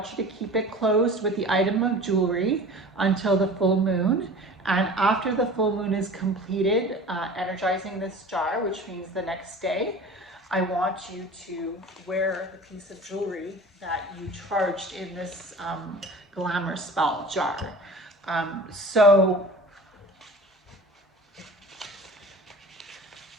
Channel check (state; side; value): normal; both; correlation 0.40